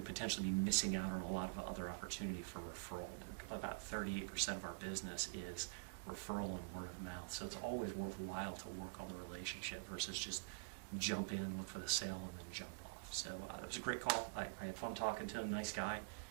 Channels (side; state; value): left; quieter; 34.1 dB